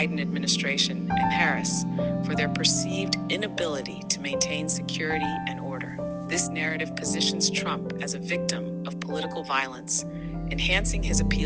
administration and Harris, for their perceived inability to maintain security and order. This narrative positions Trump as a victim of political violence, enhancing his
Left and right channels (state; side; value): identical; both; correlation 1.00